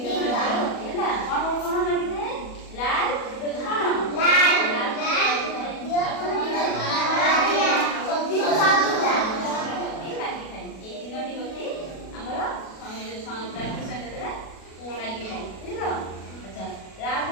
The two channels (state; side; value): late; right; 37 ms